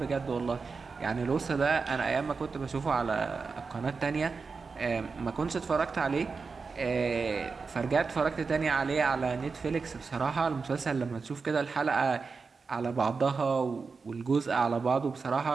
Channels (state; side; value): quieter; left; 4.7 dB